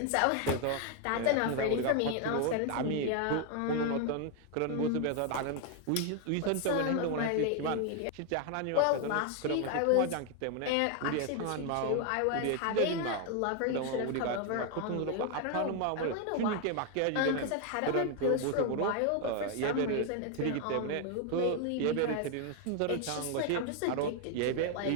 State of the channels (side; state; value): both; different; correlation 0.01